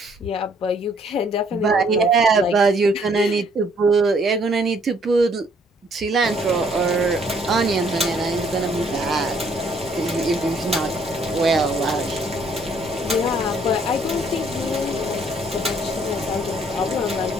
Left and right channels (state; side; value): normal; both; correlation 0.64